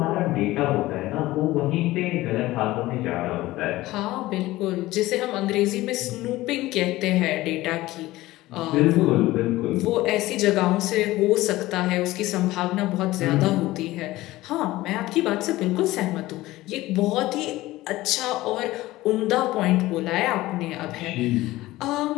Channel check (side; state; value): right; quieter; 17.6 dB